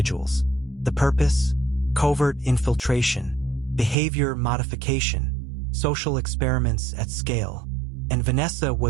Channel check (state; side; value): drops out; left; at 4.0 s